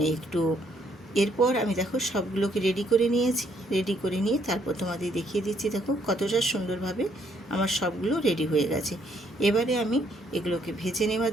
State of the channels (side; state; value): both; normal; correlation 0.69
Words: একটুও। এরপর আমি দেখো সবগুলোকে রেডি করে নিয়েছি, রেডি করে নিয়ে তারপর তোমাদের দেখিয়ে দিচ্ছি দেখো কতটা সুন্দরভাবে আমার সবগুলো রেডি হয়ে গেছে। এবারে আমি এগুলোকে ভেজে